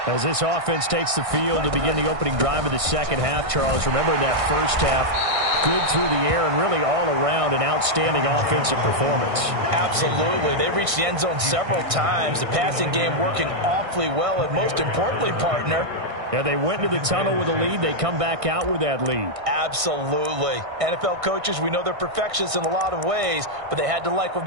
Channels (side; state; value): left; late; 1.6 ms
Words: As this offense takes the field to begin the opening drive of the second half, Charles, remember in that first half, good through the air and really all around an outstanding offensive performance. Absolutely. They reached the end zone several times. The passing game working awfully well, and most importantly, partner, yeah, they went into the tunnel with a lead. They come back out with that lead. Absolutely. NFL coaches, we know they're perfectionists in a lot of ways, but they had to like what